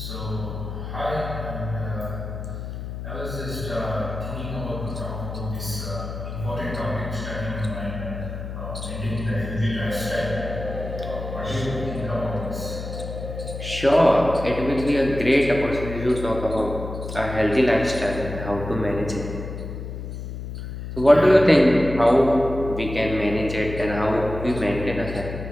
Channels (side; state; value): left; noise; hum, 8 dB below the sound